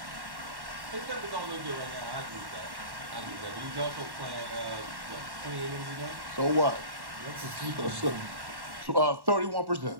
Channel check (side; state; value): left; late; 1.1 ms